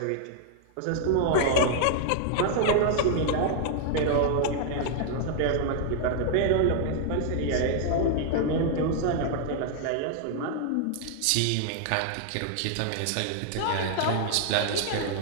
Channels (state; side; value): different; both; correlation 0.00